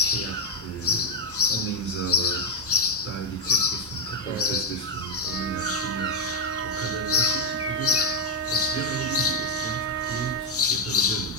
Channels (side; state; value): both; normal; correlation 0.01